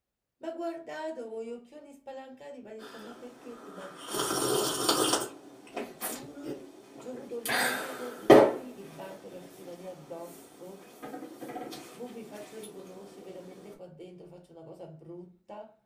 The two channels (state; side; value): identical; both; correlation 1.00